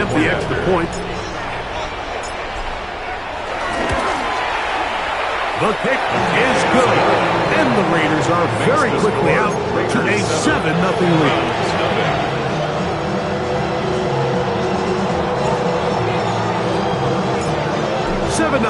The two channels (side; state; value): both; identical; correlation 1.00